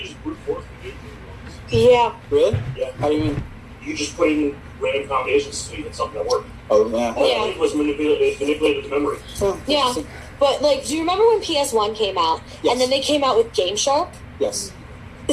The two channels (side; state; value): both; identical; correlation 1.00